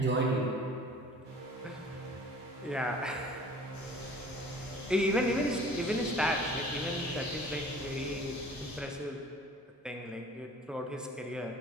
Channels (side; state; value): both; normal; correlation 0.48